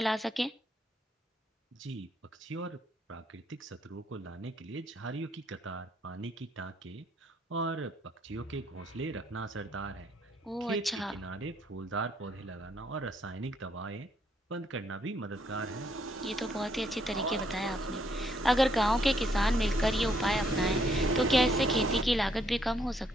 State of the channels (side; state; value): both; normal; correlation 0.71